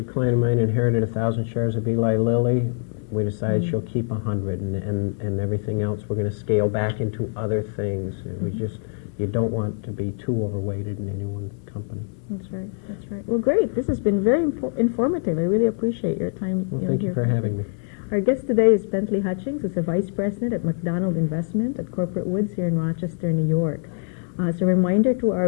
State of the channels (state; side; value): silent; right; 59 dB below the other